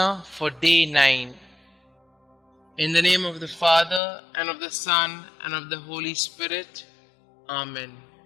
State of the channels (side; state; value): right; drops out; at 4.0 s